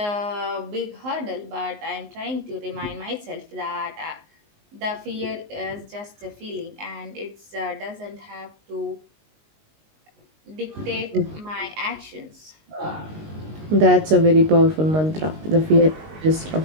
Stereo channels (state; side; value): late; left; 19 ms